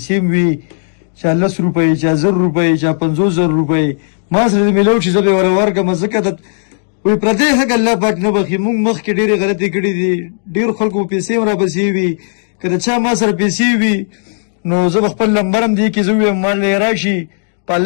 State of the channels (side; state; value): right; silent; digital silence